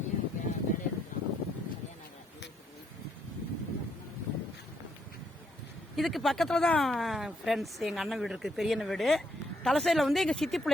இதுக்கு பக்கத்தில் தான் ஃப்ரெண்ட்ஸ் எங்கள் அண்ணன் வீடு இருக்குது, பெரிய அண்ணன் வீடு. தலசையில் வந்து எங்கள் சித்தி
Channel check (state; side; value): normal; both; correlation 0.74